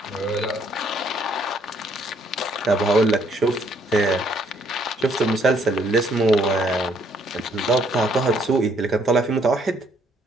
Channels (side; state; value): both; normal; correlation 0.67